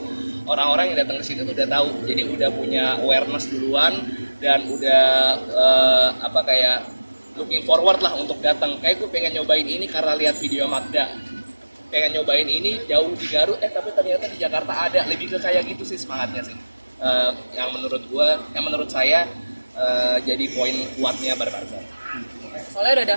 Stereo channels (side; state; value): both; inverted; correlation -1.00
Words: orang-orang yang datang ke sini tuh udah tahu. Jadi udah punya awareness duluan dan udah kayak looking forward lah untuk datang. Kayak gue pengen nyobain ini karena lihat video Magda. Pengen nyobain ini jauh di Garut, tapi ternyata di Jakarta ada. Lebih ke kayak gitu sih semangatnya sih. Yang menurut saya jadi poin kuatnya Barbazar. Soalnya udah ada